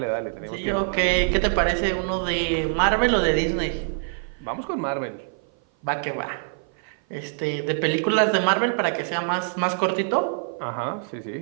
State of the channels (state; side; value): silent; left; 56 dB below the other